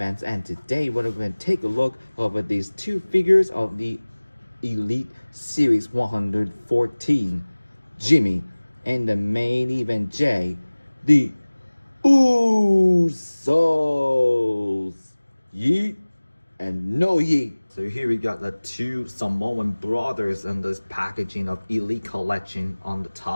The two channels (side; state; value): both; inverted; correlation -1.00